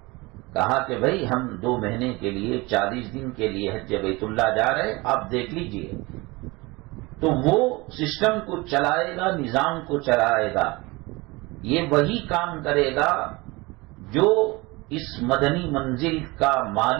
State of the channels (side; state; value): left; quieter; 23.6 dB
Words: کہا کہ بھائی ہم 2 مہینے کے لیے 40 دن کے لیے حج بیت اللہ جا رہے، آپ دیکھ لیجئے۔ تو وہ سسٹم کو چلائے گا، نظام کو چلائے گا. یہ وہی کام کرے گا جو اس مدنی منزل کا